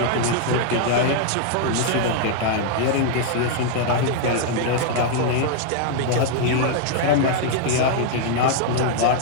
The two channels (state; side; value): different; both; correlation 0.00